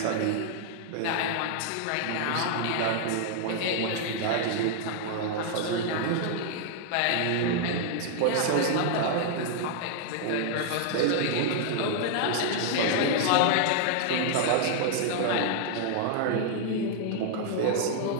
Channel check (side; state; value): both; different; correlation 0.00